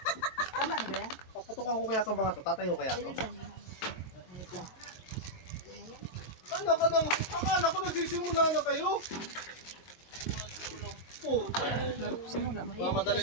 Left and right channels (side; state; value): right; late; 22 ms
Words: Tama na ba yan? Paputukan ko kaya itong mga ito. Tatayo kaya ito. Ayun lang. Ito. Ano ka nang? Akala ko nagsisimula na kayo. Puta. Simula. Mamadali